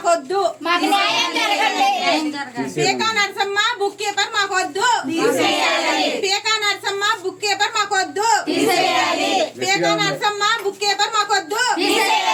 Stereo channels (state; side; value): identical; both; correlation 1.00